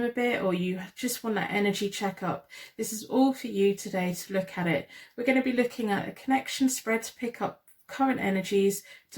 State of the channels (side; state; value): both; identical; correlation 1.00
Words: a bit, or you just want that energy checkup. This is all for you today to look at it. We're going to be looking at a connection spread to pick up current energies